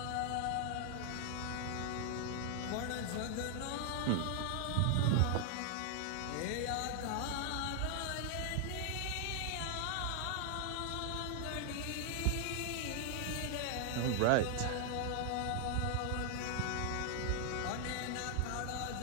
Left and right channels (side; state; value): both; different; correlation 0.00